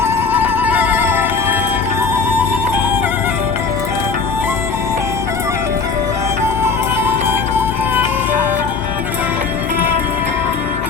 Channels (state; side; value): quieter; right; 4.9 dB